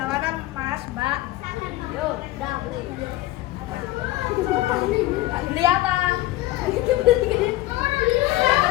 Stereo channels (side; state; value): right; quieter; 16.9 dB